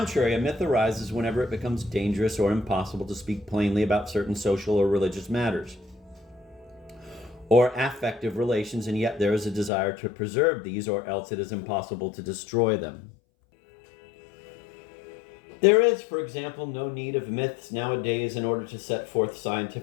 a myth arises whenever it becomes dangerous or impossible to speak plainly about certain social or religious matters, or affective relations, and yet there is a desire to preserve these, or else it is impossible to destroy them. There is, for example, no need of myths nowadays in order to set forth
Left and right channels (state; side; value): drops out; right; at 9.7 s